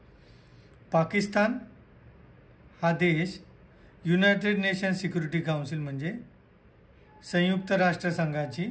पाकिस्तान हा देश युनायटेड नेशन सिक्युरिटी काउन्सिल म्हणजे संयुक्त राष्ट्रसंघाची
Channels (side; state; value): both; identical; correlation 1.00